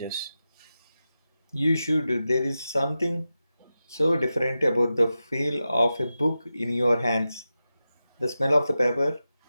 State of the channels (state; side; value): inverted; both; correlation -0.92